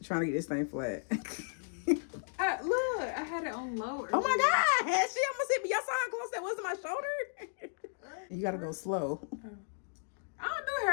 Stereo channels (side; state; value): right; silent; digital silence